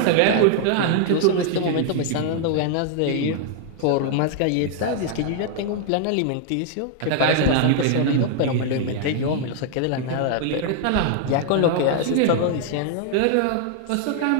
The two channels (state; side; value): different; both; correlation 0.00